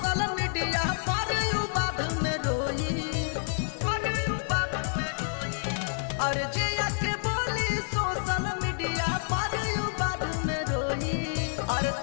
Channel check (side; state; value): right; silent; 59 dB below the other